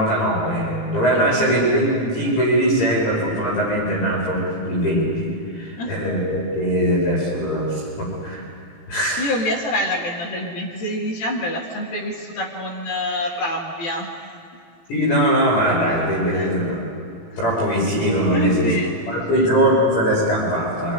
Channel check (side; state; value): right; late; 17 ms